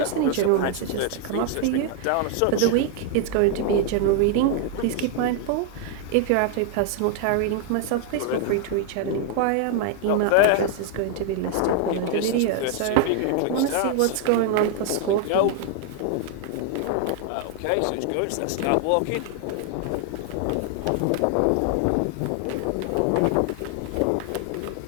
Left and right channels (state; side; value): different; both; correlation 0.00